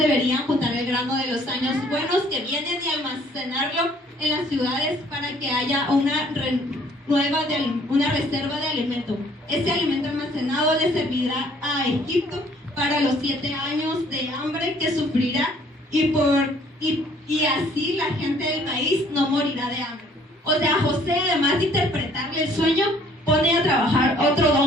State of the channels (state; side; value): normal; both; correlation 0.59